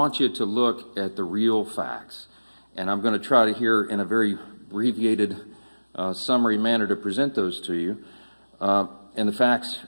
you to look at the real facts. And I'm going to try to here in a very abbreviated summary manner to present those to you. And the facts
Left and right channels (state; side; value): inverted; both; correlation -1.00